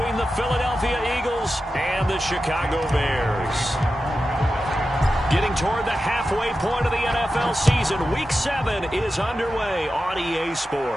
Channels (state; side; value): normal; both; correlation 0.92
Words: the Philadelphia Eagles and the Chicago Bears. Getting toward the halfway point of the NFL season, Week 7 is underway on EA